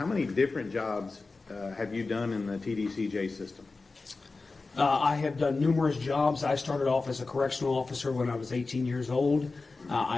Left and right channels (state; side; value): quieter; right; 3.8 dB